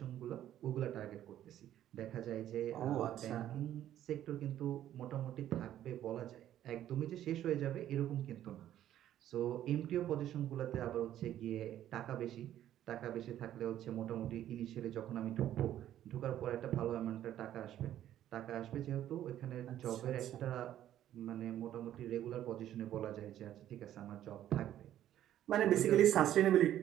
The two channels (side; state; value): left; quieter; 11.9 dB